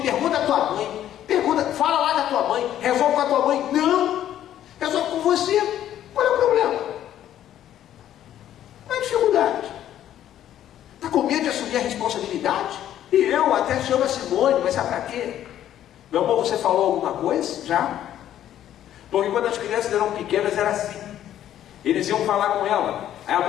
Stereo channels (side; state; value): right; quieter; 11.5 dB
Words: pergunta à tua mãe. Fala lá da tua mãe. Resolve com a tua mãe. Não. Resolve com você. Qual é o problema? Qual é a dificuldade? Está com medo de assumir a responsabilidade? E eu até chamo a Simone, mas sabe para quê? Meu amor, você falou alguma coisa? Já? Porque quando as crianças eram pequenas era assim. Eles iam falar com ela. Aí a